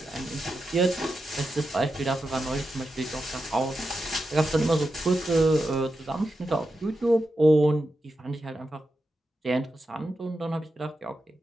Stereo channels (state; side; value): normal; both; correlation 0.89